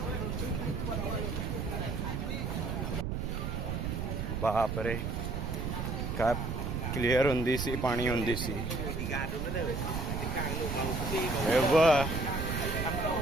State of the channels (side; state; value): right; noise; rumble, 2 dB below the sound